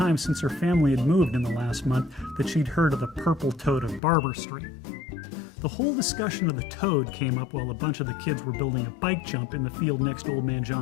since her family had moved in the last month that she'd heard of the Purple Toad of Barber Street. The whole discussion of the toad came up while a bunch of the kids were building a bike jump in the field next to Old Man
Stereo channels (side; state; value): right; drops out; at 4.0 s